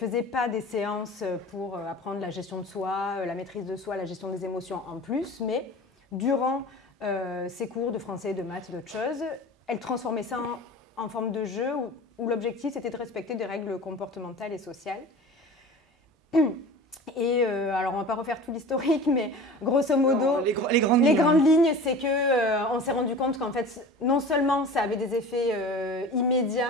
pas des séances pour apprendre la gestion de soi, la maîtrise de soi, la gestion des émotions en plus, mais durant ses cours de français, de maths, d'autres choses, elle transformait ça en forme de jeu où l'objectif c'était de respecter des règles comportementales et sociales. Et alors on ne va pas refaire tout l'historique, mais grosso modo, les grandes lignes, c'est qu'on s'est rendu compte qu'en fait, non seulement ça avait des effets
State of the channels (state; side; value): normal; both; correlation 0.38